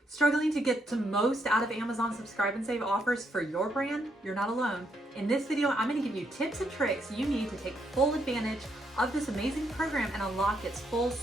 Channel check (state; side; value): normal; both; correlation 0.76